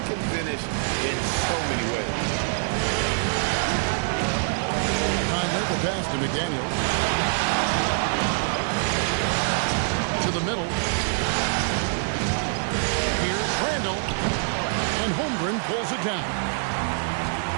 finish in so many ways. Conley, the pass to McDaniels. To the middle. Here's Randall. And Holmgren pulls it down.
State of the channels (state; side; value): silent; left; digital silence